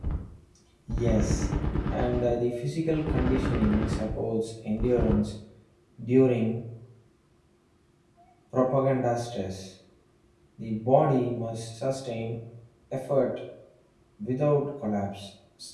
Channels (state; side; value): identical; both; correlation 1.00